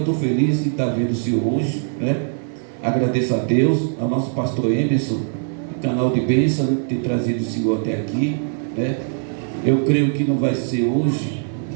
feliz de estar vendo o senhor hoje, né? Agradeço a Deus, ao nosso pastor Emerson, do canal de bênção, né, ter trazido o senhor até aqui, né? Eu creio que não vai ser hoje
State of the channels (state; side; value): silent; left; 60 dB below the other